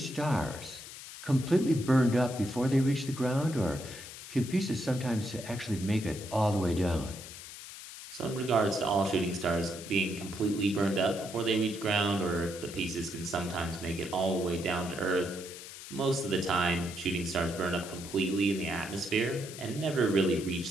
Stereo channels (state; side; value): noise; left; hiss, 13 dB below the sound